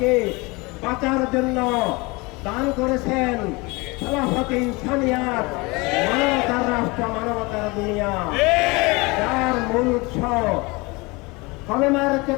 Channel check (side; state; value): right; quieter; 25.4 dB